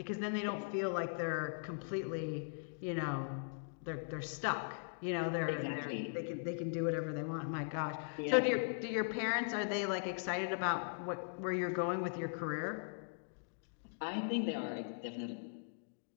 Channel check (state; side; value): silent; right; digital silence